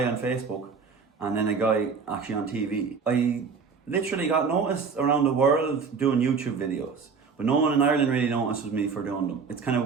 on Facebook and then a guy actually on TV. I literally got noticed around the world doing YouTube videos, but no one in Ireland really notices me for doing them. It's kind of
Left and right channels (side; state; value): left; quieter; 5.4 dB